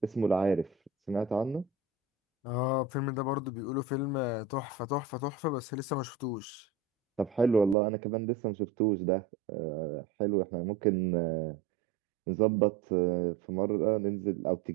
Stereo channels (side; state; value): left; drops out; at 7.8 s